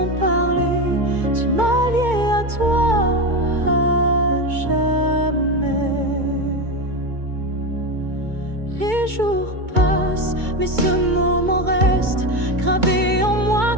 parler, tu m'as lié à toi à jamais. Les jours passent, mais ce moment reste gravé en moi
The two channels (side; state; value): left; late; 2.2 ms